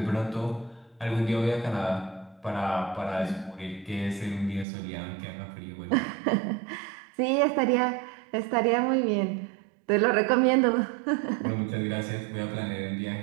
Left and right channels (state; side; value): drops out; left; at 4.7 s